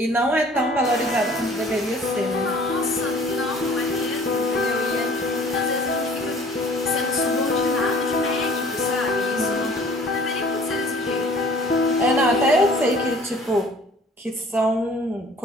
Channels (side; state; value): both; normal; correlation 0.51